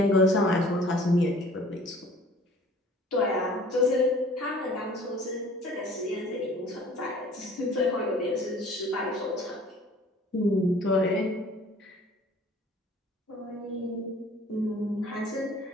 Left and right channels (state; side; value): normal; both; correlation 0.50